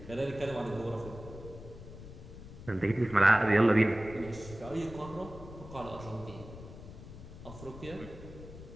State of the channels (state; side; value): noise; left; rumble, 14 dB below the sound